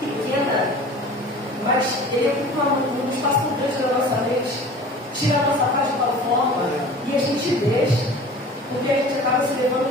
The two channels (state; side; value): normal; both; correlation 0.41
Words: pequena, mas ele ocupa um espaço muito grande na nossa mente, tira a nossa paz de tal forma e a gente deixa. Porque a gente acaba se